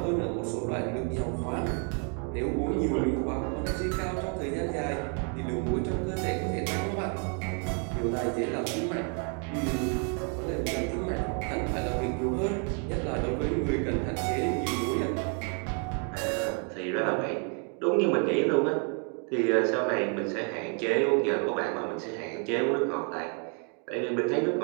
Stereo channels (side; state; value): left; quieter; 38.6 dB